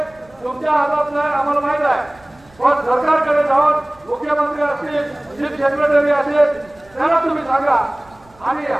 तुमच्या हातात नाही आम्हाला माहित आहे, पण सरकारकडे जाऊन मुख्यमंत्री असतील, चीफ सेक्रेटरी असेल त्यांना तुम्ही सांगा आणि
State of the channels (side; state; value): right; noise; rumble, 29 dB below the sound